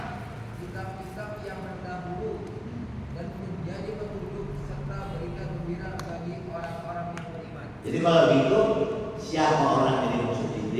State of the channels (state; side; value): identical; both; correlation 1.00